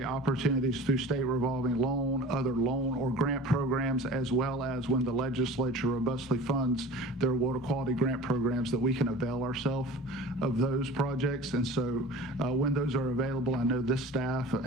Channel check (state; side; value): normal; both; correlation 0.39